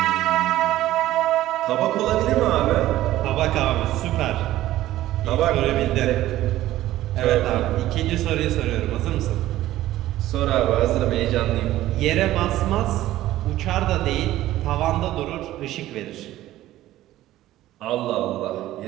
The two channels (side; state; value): left; quieter; 14.8 dB